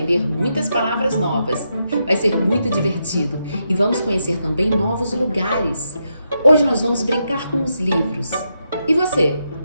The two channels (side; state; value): both; inverted; correlation -0.83